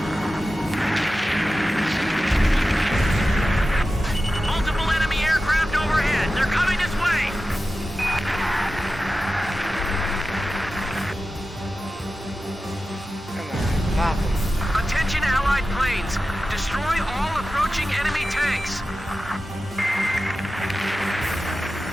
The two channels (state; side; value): normal; both; correlation 0.94